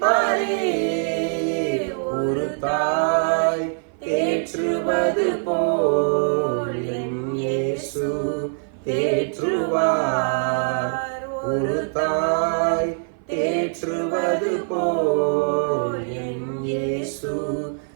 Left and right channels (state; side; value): silent; left; 56 dB below the other